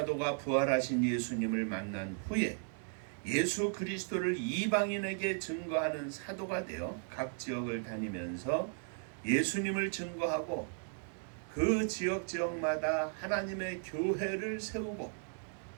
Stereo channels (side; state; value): left; silent; 54 dB below the other